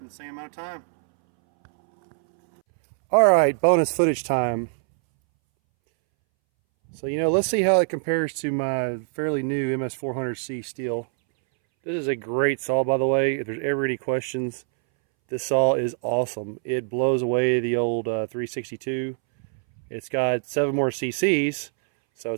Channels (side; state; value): left; silent; 62 dB below the other